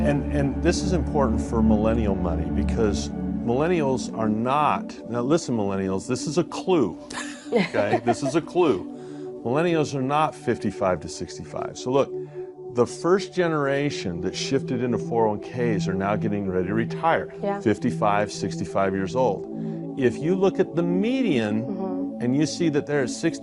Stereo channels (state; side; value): identical; both; correlation 1.00